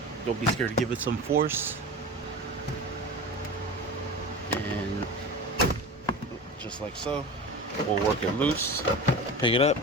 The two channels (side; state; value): both; normal; correlation 0.30